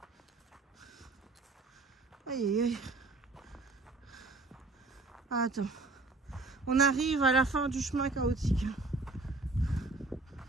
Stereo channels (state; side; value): quieter; left; 3.4 dB